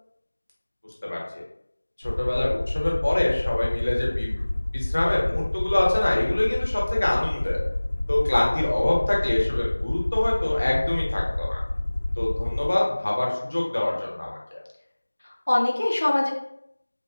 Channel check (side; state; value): both; inverted; correlation -1.00